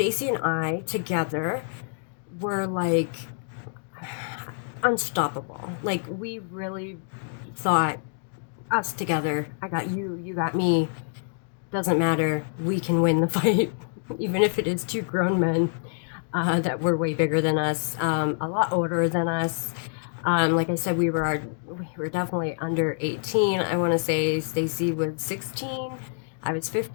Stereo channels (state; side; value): silent; right; digital silence